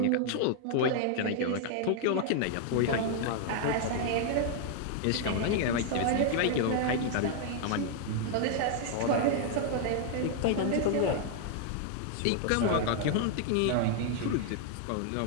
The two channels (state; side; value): different; both; correlation 0.00